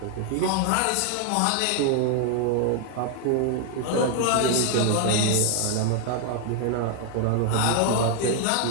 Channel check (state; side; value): different; both; correlation 0.00